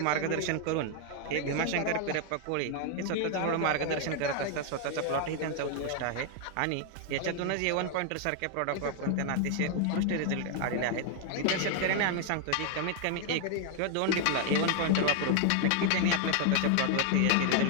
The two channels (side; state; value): both; different; correlation 0.00